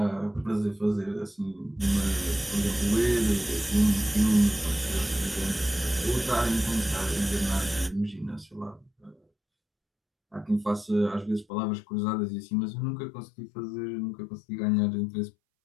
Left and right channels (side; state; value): right; drops out; at 11.5 s